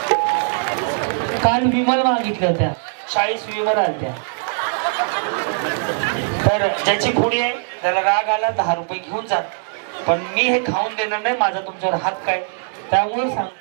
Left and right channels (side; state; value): left; silent; 59 dB below the other